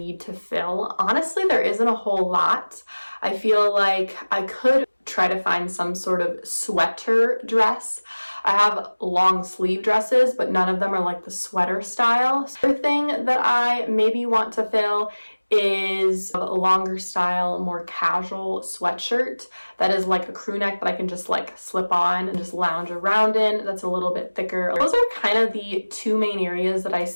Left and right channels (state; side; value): inverted; both; correlation -1.00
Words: to fill. Honestly, there isn't a whole lot. I feel like I could try to find some sort of sweater dress. I have long sleeve dresses, but none of them are like the sweater style. So the thing that I maybe want to fill is a longer style, more casual sweatshirt that is like a crew neck that I can just like slip on and just lounge around in. That's a little bit thicker. Those are kind of the 2 main areas that I